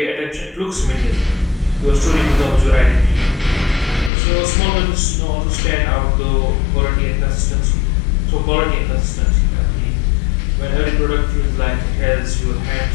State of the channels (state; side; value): drops out; right; at 4.1 s